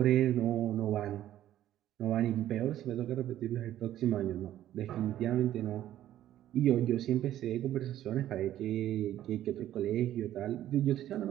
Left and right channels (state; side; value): quieter; left; 12.5 dB